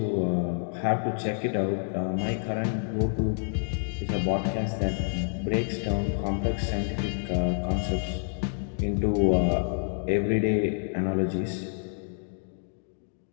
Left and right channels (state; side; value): silent; right; digital silence